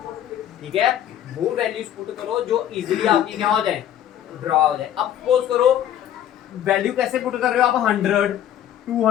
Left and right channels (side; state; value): right; quieter; 11.0 dB